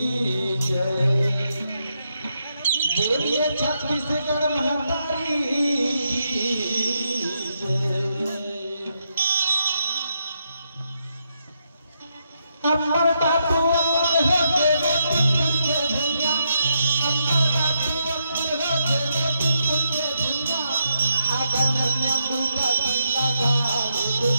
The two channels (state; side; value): inverted; both; correlation -0.82